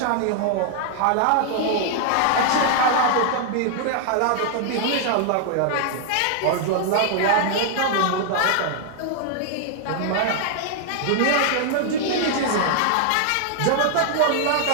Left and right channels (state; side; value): different; both; correlation 0.00